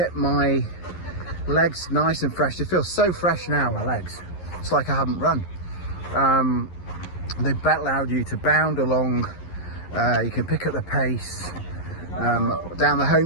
my legs nice and fresh. They feel so fresh now, my legs. It's like I haven't run. They allowed you to bound along. You can pick up the pace. Down the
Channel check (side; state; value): right; late; 11 ms